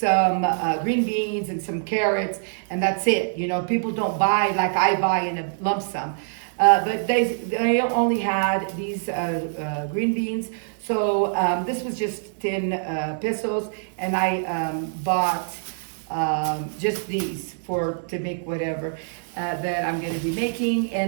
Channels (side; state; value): left; silent; digital silence